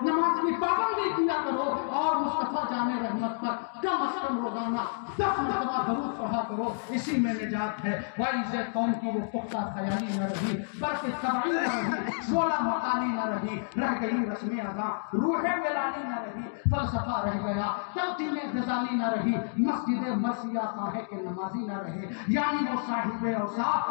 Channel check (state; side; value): silent; right; digital silence